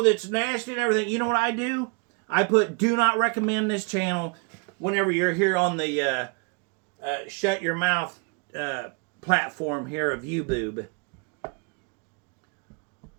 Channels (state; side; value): quieter; left; 34.0 dB